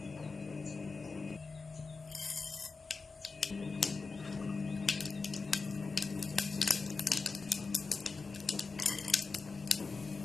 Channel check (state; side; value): quieter; right; 4.3 dB